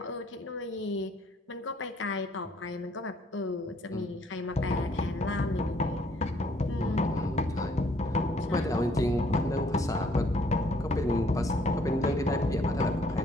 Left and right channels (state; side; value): normal; both; correlation 0.64